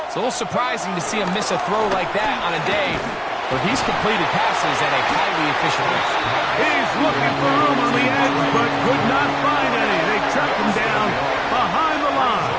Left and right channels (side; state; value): both; identical; correlation 1.00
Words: it's a little surprising to see him miss a throw like that on a day where he's completed passes at a highly efficient rate. He's looking for room on the edge, but could not find any. They track him down behind the line,